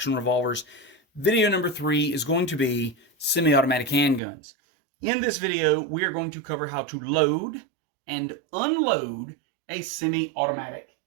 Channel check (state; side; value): drops out; left; at 4.2 s